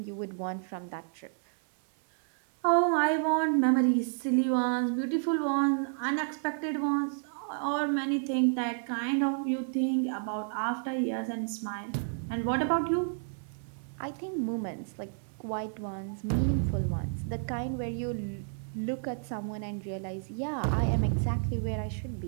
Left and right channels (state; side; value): silent; left; 57 dB below the other